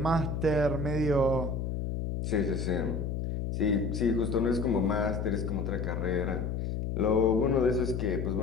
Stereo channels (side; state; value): left; noise; hum, 2 dB below the sound